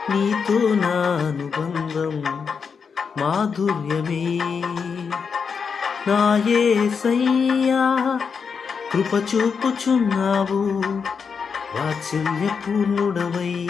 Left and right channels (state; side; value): quieter; right; 5.9 dB